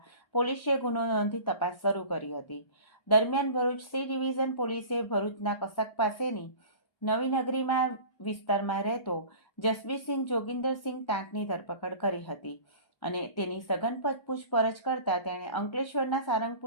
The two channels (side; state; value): right; late; 1.1 ms